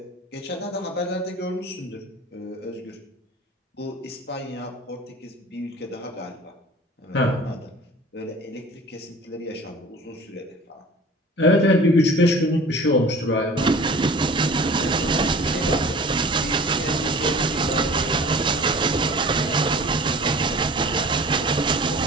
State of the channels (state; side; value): normal; both; correlation 0.42